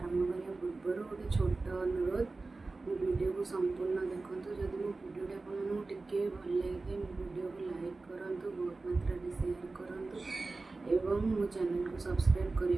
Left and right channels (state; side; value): quieter; left; 3.5 dB